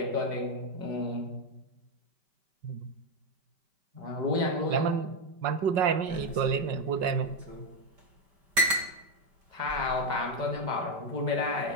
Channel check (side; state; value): left; late; 5.0 ms